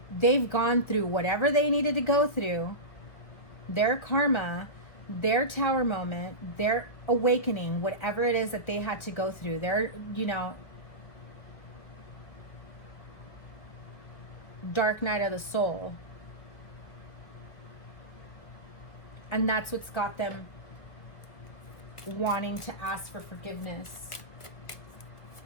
they've gone through whatever they needed to go through, their karma, their tower moment, their awakening, whatever it is that they had to go through, their, you know, dark night of the soul. And that's what's got them wanting to ask for forgiveness.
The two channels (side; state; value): right; late; 1.7 ms